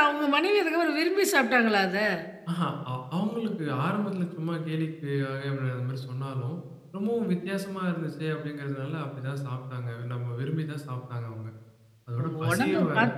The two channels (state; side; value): identical; both; correlation 1.00